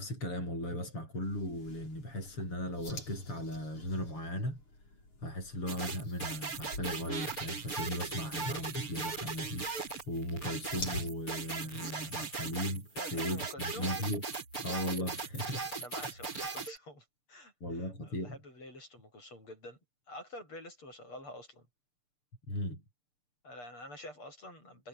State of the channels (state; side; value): late; right; 6.8 ms